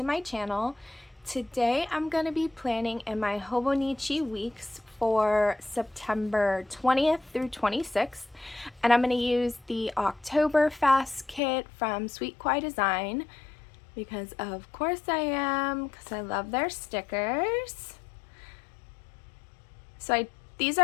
my channel. Today I'm going to be planning in my Hobonichi Weeks for September 20th through 26th, and I'm going to use the Octoberfest kit from Sweet Kawaii Design because of course I am, because I love their stickers. So these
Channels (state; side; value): drops out; right; at 11.4 s